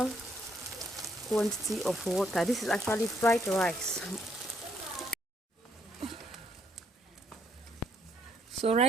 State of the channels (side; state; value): both; normal; correlation 0.71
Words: quantity of water. This is actually fried rice. So